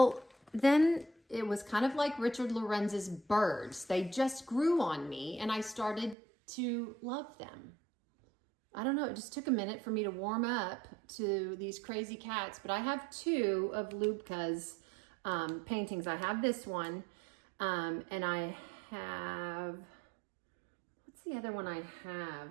then it was kind of like Richard Lorenz's birds. They just grew on me and I started to love them. I don't know, it just took a minute for me to warm up to these crazy cats, but I have 2 of Lubka's paintings. I have this one. And I have, what's the other one I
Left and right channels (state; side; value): drops out; left; at 6.2 s